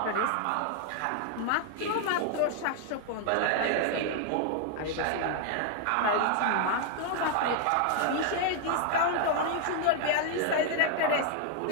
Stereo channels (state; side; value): different; both; correlation 0.00